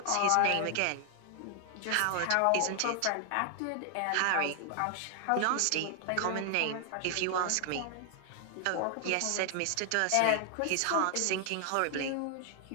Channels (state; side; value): different; both; correlation 0.00